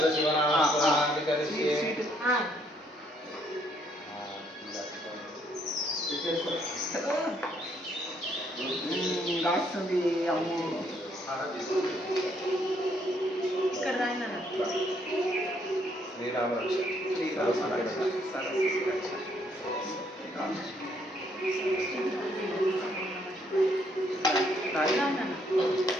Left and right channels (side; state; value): both; normal; correlation 0.69